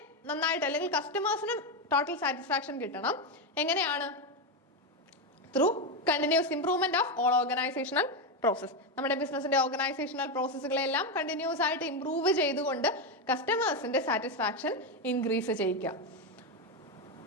നന്നായിട്ട് അല്ലെങ്കിൽ കസ്റ്റമേഴ്സിനും ടോട്ടൽ സാറ്റിസ്ഫാക്ഷൻ കിട്ടണം. എങ്ങനെയാണ്? Through continuous improvement of all organisational process. നമ്മുടെ ബിസിനസിന്റെ ഓർഗനൈസേഷണൽ പ്രോസസ്സുകളെല്ലാം കണ്ടിന്യൂസ് ആയിട്ട് ഇംപ്രൂവ് ചെയ്തുകൊണ്ട് കസ്റ്റമേഴ്സിന്റെ സാറ്റിസ്ഫാക്ഷൻ ഇൻക്രീസ് ചെയ്യിക്കുക.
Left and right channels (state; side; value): normal; both; correlation 0.09